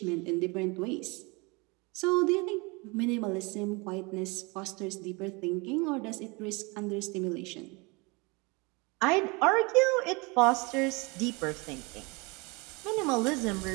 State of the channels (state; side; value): quieter; left; 27.9 dB